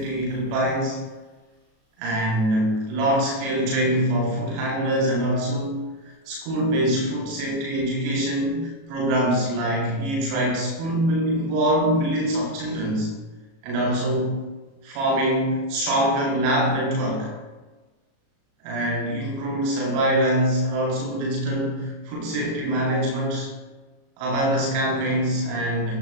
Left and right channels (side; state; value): left; late; 37 ms